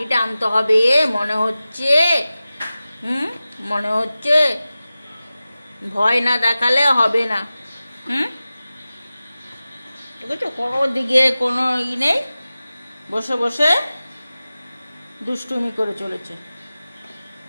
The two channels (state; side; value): inverted; both; correlation -0.96